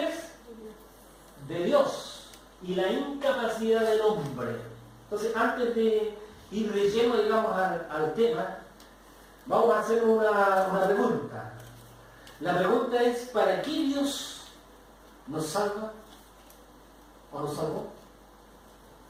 es? De Dios, y la incapacidad del hombre. Entonces, antes de ir de lleno, digamos, al tema, vamos a hacer una pregunta. La pregunta es, ¿para qué Dios nos salva o nos salvó?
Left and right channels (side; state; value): both; identical; correlation 1.00